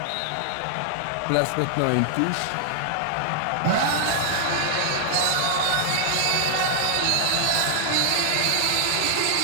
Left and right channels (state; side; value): different; both; correlation 0.00